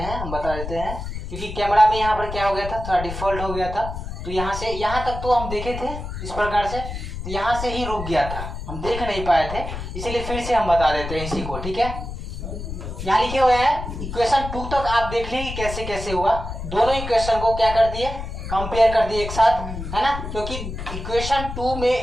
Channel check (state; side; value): noise; left; rumble, 7 dB below the sound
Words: हैं, क्योंकि कैमरा में यहाँ पर क्या हो गया था, थोड़ा डिफॉल्ट हो गया था, तो यहाँ से यहाँ तक तो हम देखे थे इस प्रकार से, तो यहाँ से ही रुक गया था, हम देख नहीं पाए थे, इसीलिए फिर से हम बता देते हैं इसी को, ठीक है। यहाँ लिखे हुए हैं इक्वेशन 2 तक आप देख लीजिए कैसे कैसे हुआ। दोनों इक्वेशन को क्या कर दिए, कंपेयर कर दिए एक साथ, है ना। क्योंकि इक्वेशन 2 में